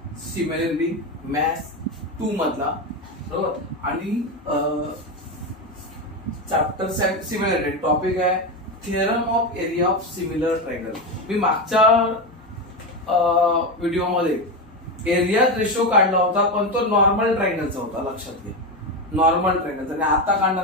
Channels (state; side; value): normal; both; correlation 0.14